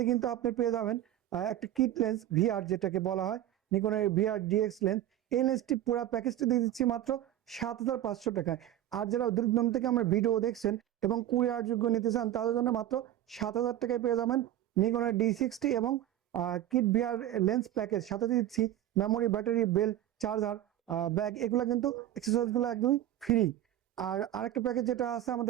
কিন্তু আপনি পেয়ে যাবেন একটা কিট লেন্স ভিআর, যেটাকে বলা হয় নিকনের ভিআর ডিএক্স লেন্স। এই লেন্সটি পুরো প্যাকেজটি দিয়ে দিচ্ছি মাত্র 7,500 টাকায়। আর যারা দূরদূরান্ত থেকে আমার ভিডিও দেখছেন এবং কুরিয়ার যোগ্য নিতে চান, তাদের জন্য মাত্র 7,000 টাকায় পেয়ে যাবেন নিকনের D60 এবং কিট ভিআর লেন্স প্যাকেজ। সাথে দিচ্ছি মেমোরি, ব্যাটারি, বেল, চার্জার, ব্যাগ, এগুলো কিন্তু এক্সেসরিজগুলো একদমই ফ্রি। আর আরেকটা প্যাকেজ যেটা আছে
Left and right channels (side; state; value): left; quieter; 12.6 dB